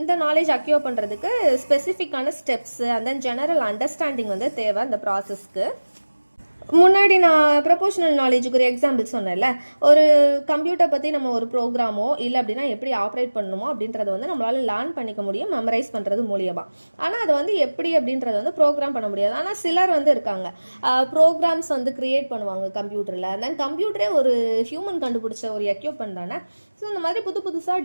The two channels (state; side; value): inverted; both; correlation -1.00